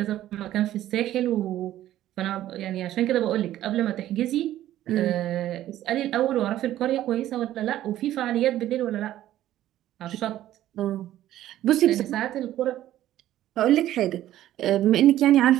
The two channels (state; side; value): quieter; left; 13.3 dB